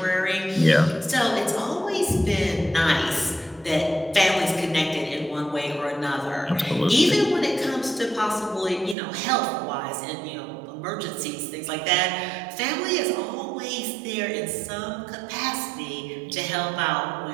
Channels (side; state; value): left; drops out; at 9.0 s